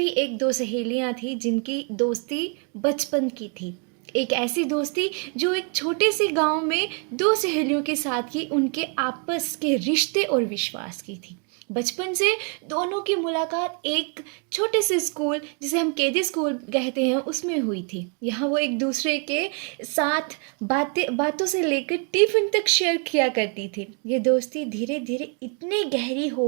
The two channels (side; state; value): left; quieter; 38.4 dB